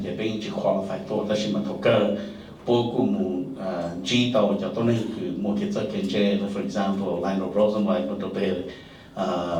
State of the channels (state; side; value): identical; both; correlation 1.00